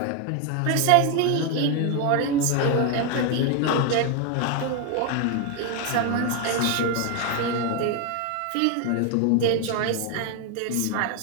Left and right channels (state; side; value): different; both; correlation 0.01